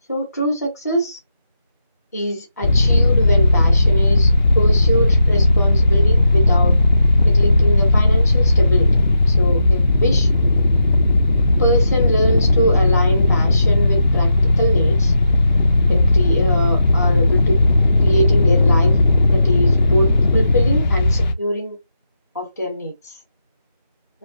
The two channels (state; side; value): inverted; both; correlation -0.86